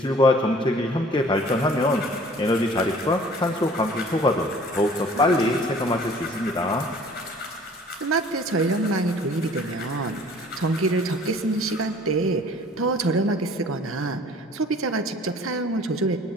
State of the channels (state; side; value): normal; both; correlation 0.51